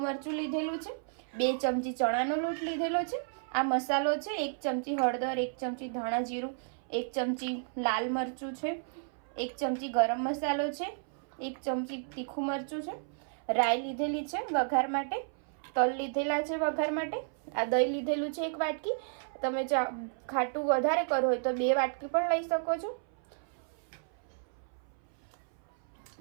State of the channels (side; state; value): left; silent; 56 dB below the other